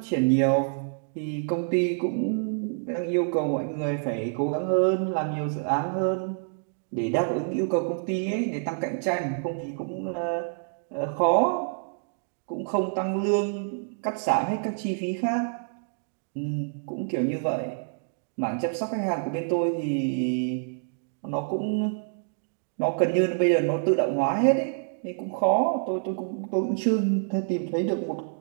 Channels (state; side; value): silent; left; digital silence